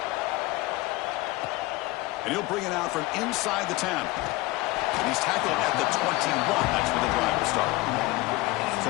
And he'll bring it out from inside the 10. And he's tackled at the 21. That's where the drive will start. So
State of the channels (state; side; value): quieter; right; 20.5 dB